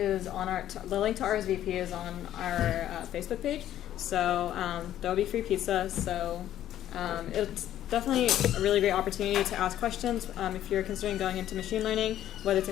on the link to RSVP is on our Facebook page. So there will be free pizza. So it's definitely a really great opportunity to ask questions if you're considering going into machine learning, whether it's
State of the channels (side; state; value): right; quieter; 12.0 dB